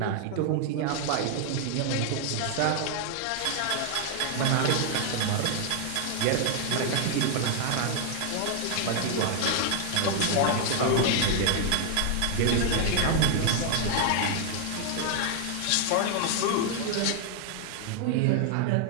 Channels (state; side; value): different; both; correlation 0.00